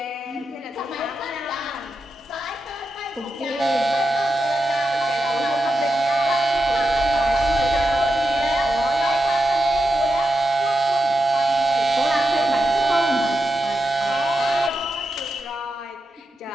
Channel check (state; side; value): normal; both; correlation 0.87